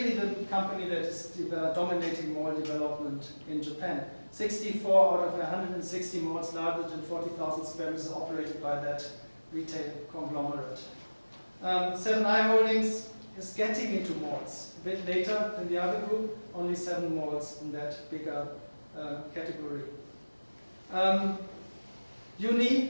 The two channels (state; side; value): inverted; both; correlation -1.00